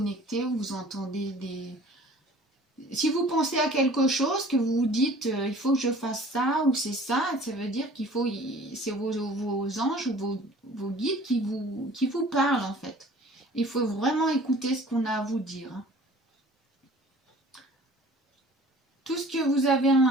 ou vous entendez si vous pensez à quelque chose que vous vous dites il faut que je fasse ça ou c'est ça, ça veut dire qu'il faut c'est vos anges ou vos guides qui vous parlent en fait. Il faut vraiment écouter ce qu'on a à vous dire. Tout ce que vous avez à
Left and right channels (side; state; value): both; normal; correlation 0.49